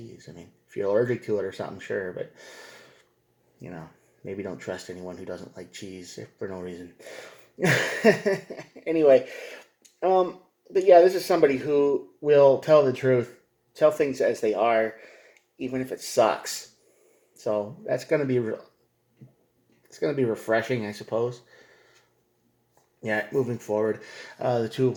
I mean, if you're allergic to it or something, sure, but maybe don't trust anyone who doesn't like cheese for no reason. Anyway, but yeah, this is somebody who will tell the truth, tell things as they are, even if it sucks. So that's going to be it's going to be refreshing, I suppose. Yeah, moving forward, the Two of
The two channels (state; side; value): identical; both; correlation 1.00